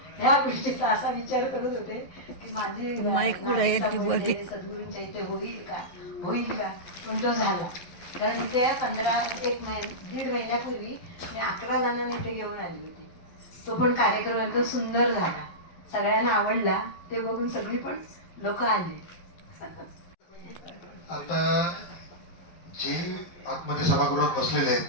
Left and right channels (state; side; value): late; right; 12 ms